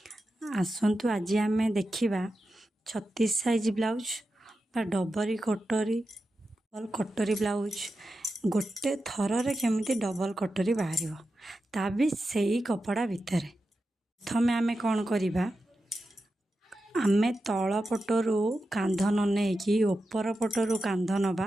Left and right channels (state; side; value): normal; both; correlation 0.90